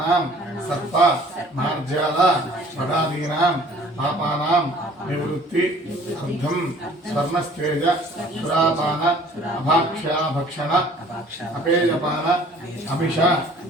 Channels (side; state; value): both; normal; correlation 0.53